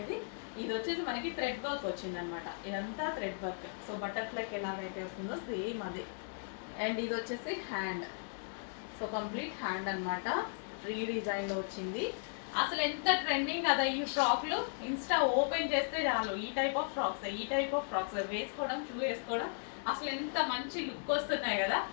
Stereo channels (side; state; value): right; silent; digital silence